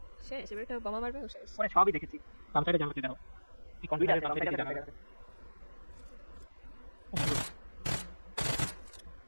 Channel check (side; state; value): both; inverted; correlation -1.00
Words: শেষ এবার একটা বোমা মারবে ও শেষ। পরে সবই দেখেছি। বাম সাইডে জানাতে দাও, এই কনফিডেন্স বাম সাইডে জানাতে।